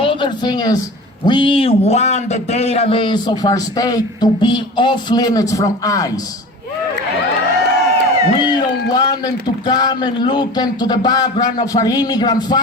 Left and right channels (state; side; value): normal; both; correlation 0.36